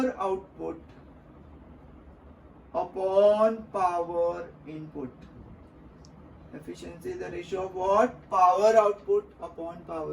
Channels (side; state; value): both; identical; correlation 1.00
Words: output upon power input. Efficiency is the ratio of what? Power output upon